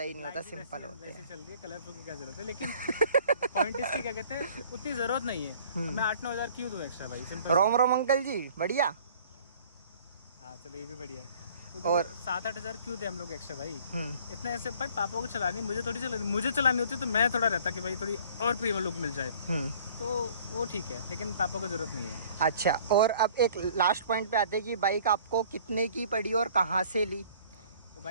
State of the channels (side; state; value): both; inverted; correlation -0.53